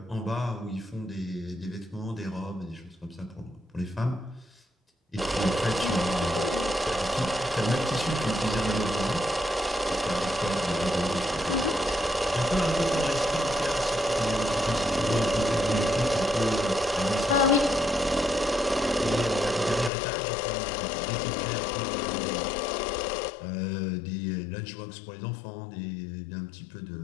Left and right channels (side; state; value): right; drops out; at 19.9 s